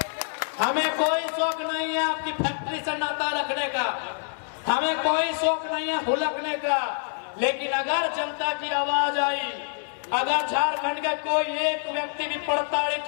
हमें कोई शौक नहीं है आपकी फैक्ट्री से नाता रखने का, हमें कोई शौक नहीं है हुलकने का। लेकिन अगर जनता की आवाज आई, अगर झारखंड का कोई एक व्यक्ति भी प्रताड़ित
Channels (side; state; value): right; silent; 60 dB below the other